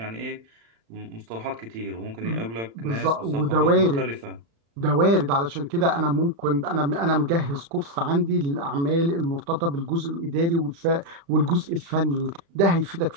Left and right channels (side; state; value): left; late; 35 ms